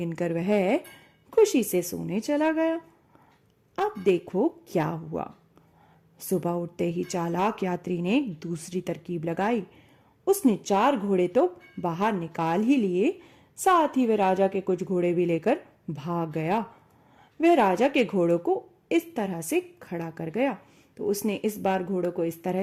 वह खुशी से सोने चला गया। अब देखो क्या हुआ। सुबह उठते ही चालाक यात्री ने एक दूसरी तरकीब लगाई। उसने 4 घोड़े तो बाहर निकाल ही लिए, साथ ही वह राजा के कुछ घोड़े भी लेकर भाग गया। वह राजा के घोड़ों को इस तरह से खड़ा कर गया। तो उसने इस बार घोड़ों को इस तरह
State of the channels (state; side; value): identical; both; correlation 1.00